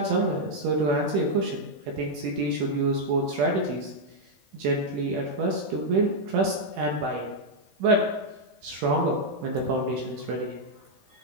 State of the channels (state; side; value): late; left; 15 ms